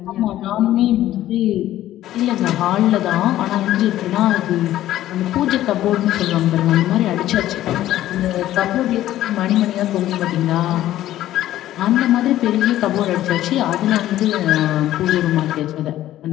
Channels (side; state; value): right; quieter; 13.7 dB